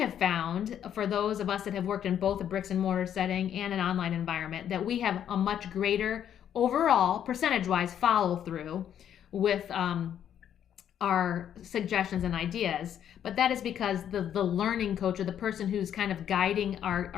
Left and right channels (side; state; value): right; quieter; 9.7 dB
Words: found, for those of us that have worked in both a bricks and mortar setting and an online environment, that we have a much greater overall percentage-wise follow through with our suggestions and ideas. But that is because the learning coach or the person who's kind of guiding